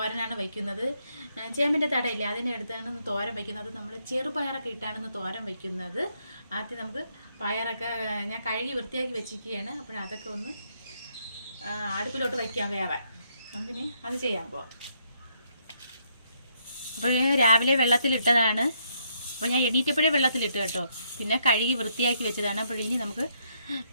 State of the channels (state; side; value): inverted; both; correlation -0.74